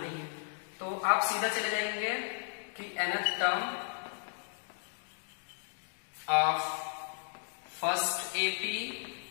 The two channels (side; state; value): right; silent; digital silence